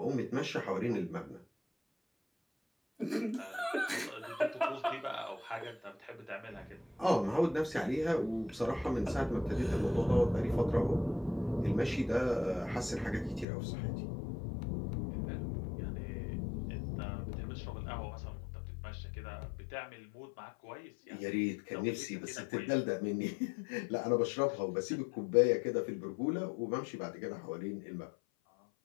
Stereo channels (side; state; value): right; drops out; at 13.5 s